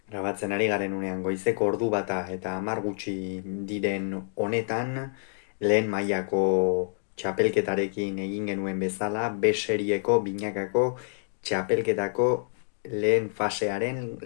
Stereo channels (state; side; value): silent; right; digital silence